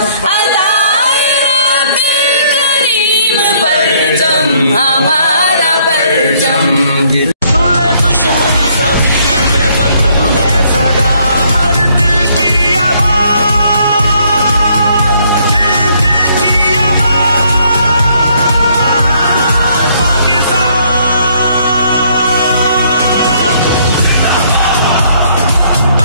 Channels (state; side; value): inverted; both; correlation -0.66